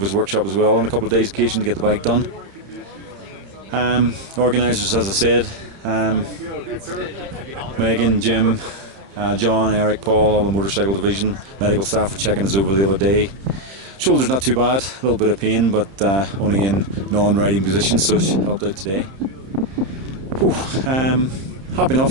workshop as well on a couple of days' occasion to get the bike done. Organisers, as I said, Megan, Jim, John, Eric, Paul, all the motorcycle division, medical staff were checking us over the other day. Shoulder's not too bad, a little bit of pain, but only in non-riding position, so it helped out today. Whew, happy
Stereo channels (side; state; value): left; late; 31 ms